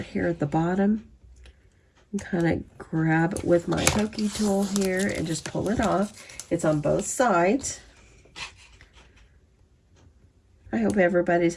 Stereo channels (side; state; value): both; identical; correlation 1.00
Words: here at the bottom and kind of grab it with my pokey tool here and just pull it off. It's on both sides. I hope everybody's